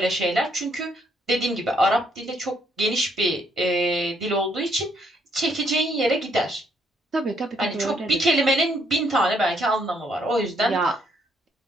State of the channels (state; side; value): normal; both; correlation 0.70